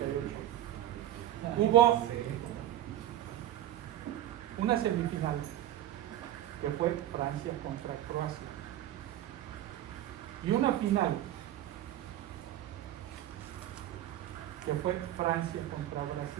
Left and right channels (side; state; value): left; quieter; 12.9 dB